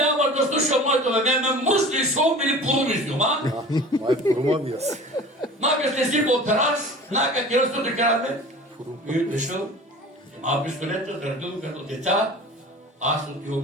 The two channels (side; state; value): both; normal; correlation 0.40